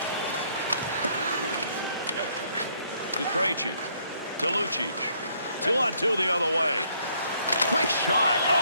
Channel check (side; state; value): both; inverted; correlation -0.68